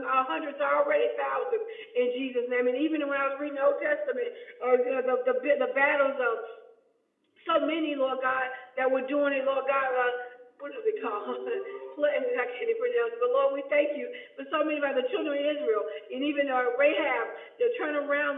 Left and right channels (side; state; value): both; identical; correlation 1.00